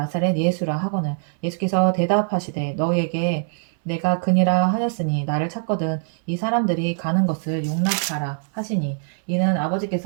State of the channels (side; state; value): left; silent; 64 dB below the other